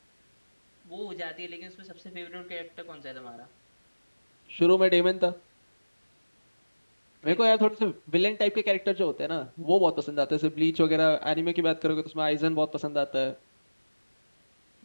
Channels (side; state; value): both; inverted; correlation -1.00